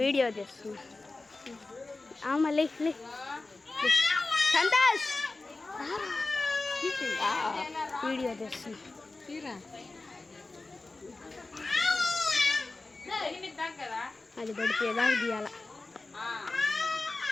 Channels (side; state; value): right; quieter; 3.3 dB